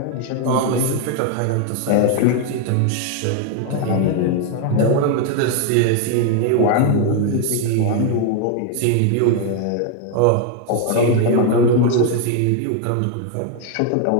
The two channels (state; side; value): different; both; correlation 0.01